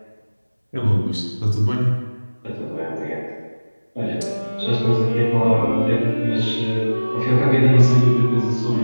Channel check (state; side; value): inverted; both; correlation -1.00